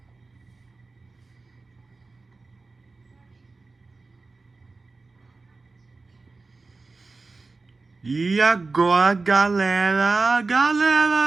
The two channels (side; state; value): left; quieter; 3.8 dB